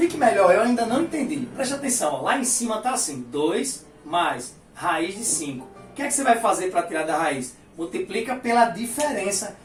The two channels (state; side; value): identical; both; correlation 1.00